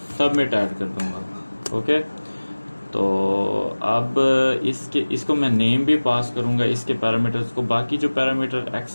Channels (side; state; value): both; inverted; correlation -1.00